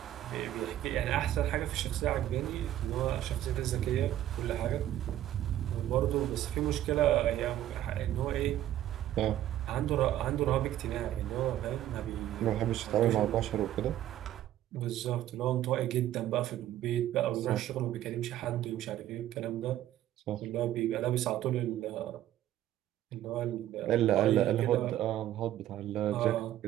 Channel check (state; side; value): quieter; left; 12.8 dB